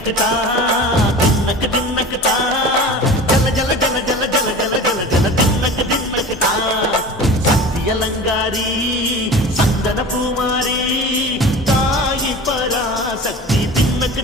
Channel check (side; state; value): both; normal; correlation 0.36